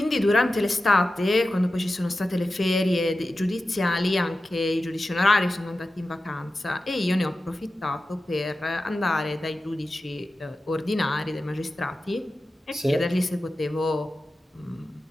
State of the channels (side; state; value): both; normal; correlation 0.93